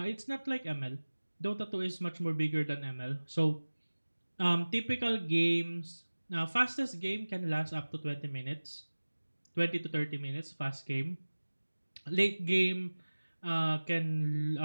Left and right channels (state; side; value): inverted; both; correlation -1.00